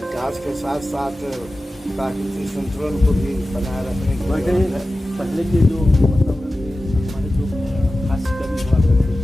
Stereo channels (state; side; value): normal; both; correlation 0.95